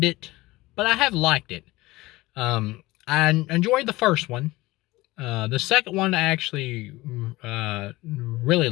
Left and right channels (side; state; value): right; quieter; 19.7 dB